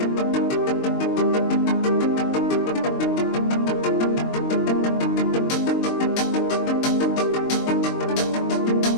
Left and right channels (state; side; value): late; right; 22 ms